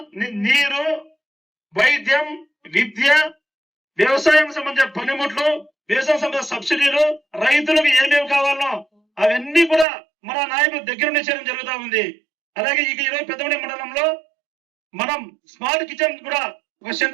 నీరు, వైద్యం, విద్య, వ్యవసాయం సంబంధించిన పనిముట్లు, వ్యవసాయం సంబంధించిన సబ్సిడీలు, రైతులకు ఏమేమి కావాలో అవన్నీ కూడా మన నాయకులు దగ్గర నుంచి చేయడం జరుగుతూ ఉంది. అలాగే ఈరోజు పెద్దమూడి మండలంలో మనం స్మార్ట్ కిచెన్ కూడా ఒక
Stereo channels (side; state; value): left; drops out; at 9.9 s